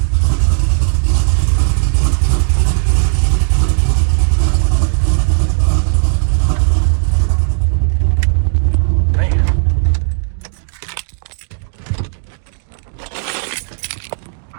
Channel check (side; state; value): left; silent; digital silence